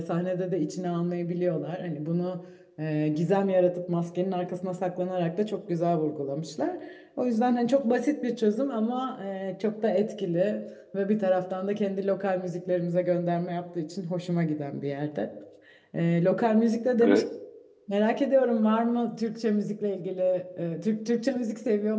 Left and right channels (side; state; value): both; identical; correlation 1.00